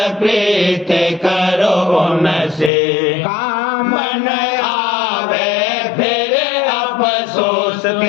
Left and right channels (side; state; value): right; drops out; at 2.7 s